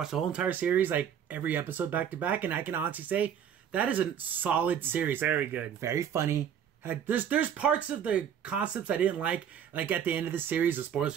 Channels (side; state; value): left; quieter; 8.8 dB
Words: the whole entire series, like every episode back to back, and I can honestly say that is a solid series. Very good. Very funny. There's parts of the concepts I didn't like at the end of the series, the spoilers